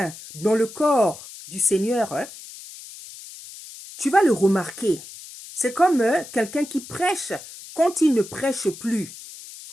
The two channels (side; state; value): left; noise; hiss, 15 dB below the sound